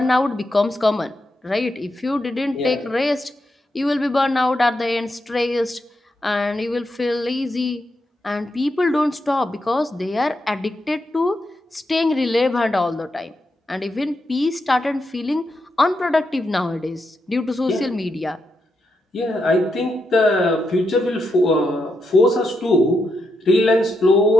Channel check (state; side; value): normal; both; correlation 0.83